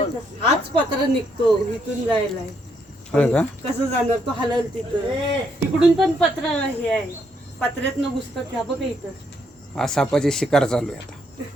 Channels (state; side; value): normal; both; correlation 0.74